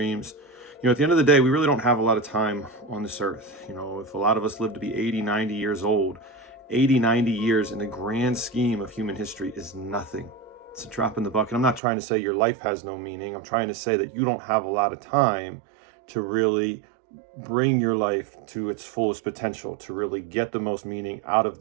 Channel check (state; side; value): drops out; left; at 11.8 s